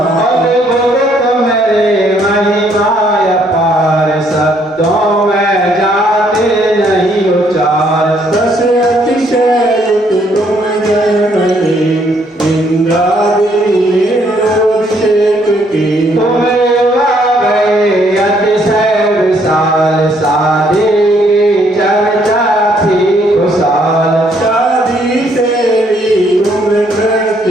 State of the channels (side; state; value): both; normal; correlation 0.68